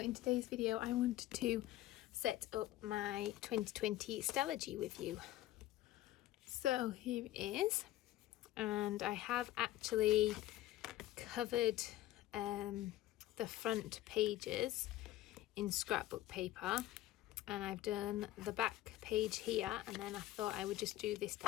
today's video I wanted to set up my 2020 Stalogy with you. So here it is, and I have actually covered the front pages in scrapbook paper, and I've done the back page here, and then I thought I would just do this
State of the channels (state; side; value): quieter; right; 15.1 dB